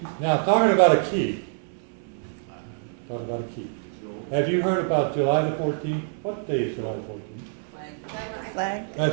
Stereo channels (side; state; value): left; silent; 61 dB below the other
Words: Now, talking about a key. Have you heard about July the 14th? What day is July the 14th? Flag?